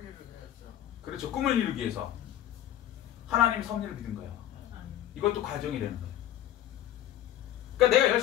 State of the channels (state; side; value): quieter; right; 12.1 dB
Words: 그렇죠. 꿈을 이루기 위해서. 하나님의 섭리를 믿은 거예요. 이것도 과정이 되는 거예요. 그러니까 내가